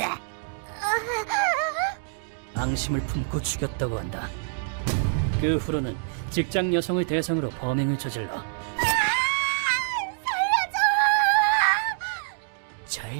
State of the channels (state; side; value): silent; left; digital silence